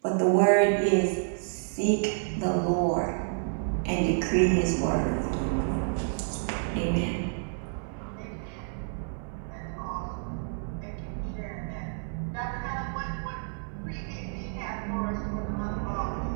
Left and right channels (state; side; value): silent; left; digital silence